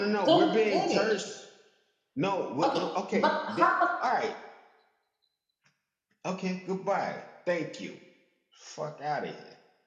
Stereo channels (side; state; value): both; identical; correlation 1.00